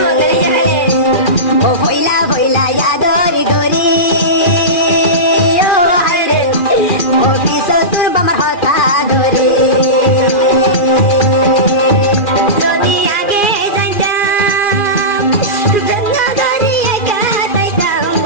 ও ভইলা ভইলা ইয়াদরি দরি ও হাইরে ও পিছো তোর আমার হতা ধরে যদি আগে যাইতাম জন্নদারি একা তাইতাম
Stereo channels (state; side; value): late; right; 2.4 ms